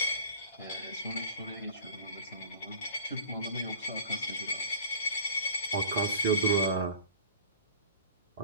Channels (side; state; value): both; inverted; correlation -0.42